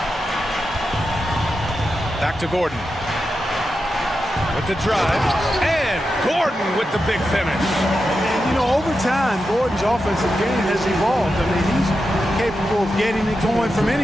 Back to Gordon. With the drive. And Gordon with the big finish. And, you know, over time, Gordon's offensive game has evolved. I mean, he's capable of getting it going from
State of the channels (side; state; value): both; normal; correlation 0.89